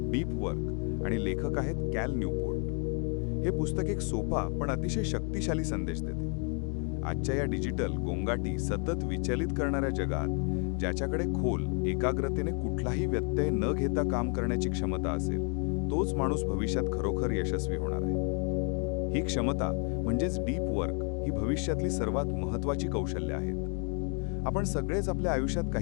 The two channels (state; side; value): quieter; right; 39.6 dB